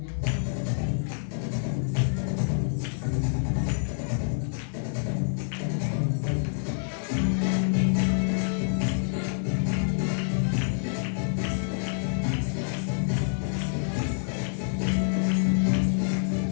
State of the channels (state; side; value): silent; right; digital silence